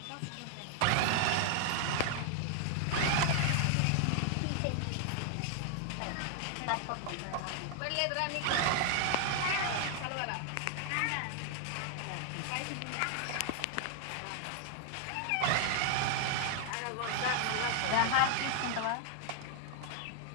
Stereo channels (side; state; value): both; different; correlation 0.00